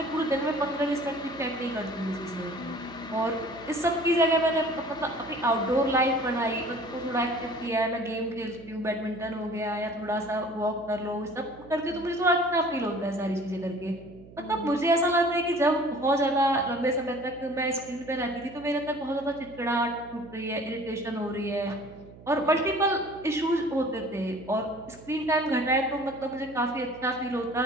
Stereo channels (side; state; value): right; noise; hum, 20 dB below the sound